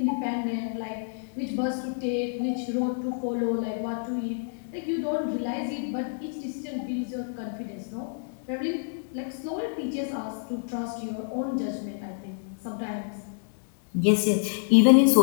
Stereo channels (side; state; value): right; silent; digital silence